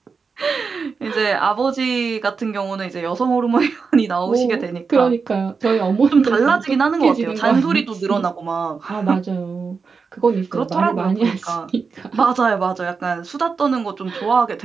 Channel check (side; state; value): left; quieter; 5.1 dB